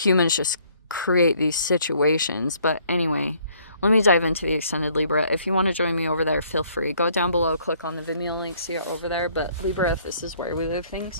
just create these situations. But anyway, let me dive into the extended Libra. If you want to join me over there, feel free. Go down below, click on the Vimeo link, see it over there. But Libra, if this is where we live things,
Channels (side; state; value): both; inverted; correlation -0.63